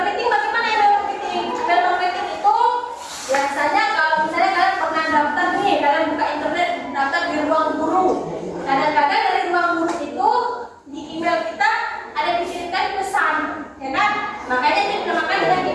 bagaimana email marketing? Email marketing itu biasanya kalau misalnya kalian pernah daftar nih, kalian buka internet daftar di ruang guru. Kadang-kadang dari ruang guru itu di email kita ada dikirimkan pesan, ya kan? Makanya dia dinamakan dengan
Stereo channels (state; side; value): identical; both; correlation 1.00